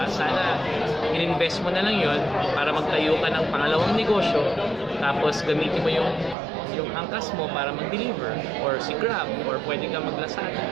Sana in-invest mo na lang yon para magtayo ka ng pangalawang negosyo, tapos gamitin mo yung angkas mo para mag-deliver, or si Grab, or pwede ka mag-Lazada.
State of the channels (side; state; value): left; drops out; at 6.4 s